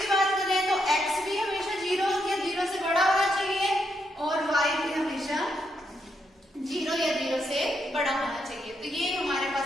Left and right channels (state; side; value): normal; both; correlation 0.79